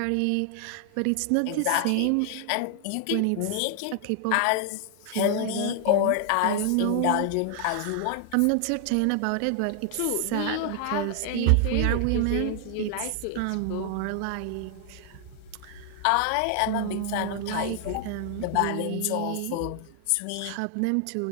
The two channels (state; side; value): different; both; correlation 0.00